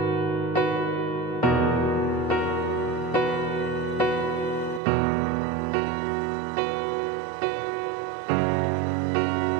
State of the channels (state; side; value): drops out; left; at 4.8 s